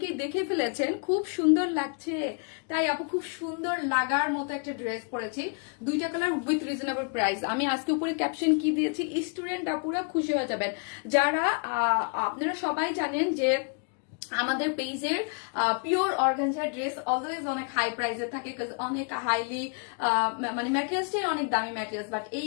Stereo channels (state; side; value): quieter; right; 40.0 dB